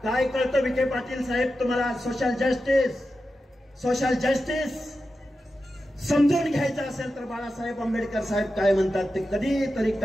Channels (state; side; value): normal; both; correlation 0.91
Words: काय कळतं विखे पाटील साहेब तुम्हाला? सोशल जस्टिस समजून घ्यायचं असेल तर बाळासाहेब आंबेडकर साहेब काय म्हणतात ते कधीतरी